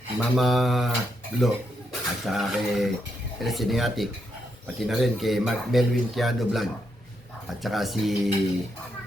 Mama Lo, at saka kay El Cineatic, pati na rin kay Mark Melvin Tiado Vlog, at saka si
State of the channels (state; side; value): normal; both; correlation 0.80